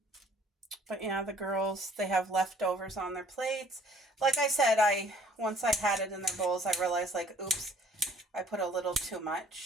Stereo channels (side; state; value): both; normal; correlation 0.56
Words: But yeah, the girls, they have leftovers on their plates. Like I said, once I had it in their bowls, I realized, like, oops, I put a little too